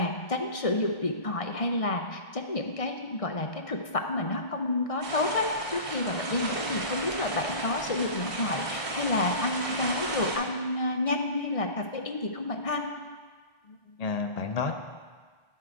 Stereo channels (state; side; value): late; right; 1.6 ms